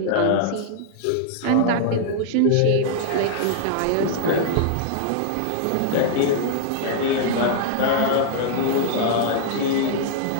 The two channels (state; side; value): different; both; correlation -0.01